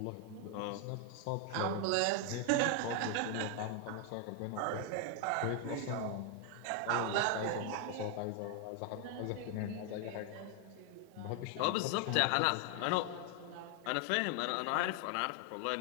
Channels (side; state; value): both; different; correlation 0.01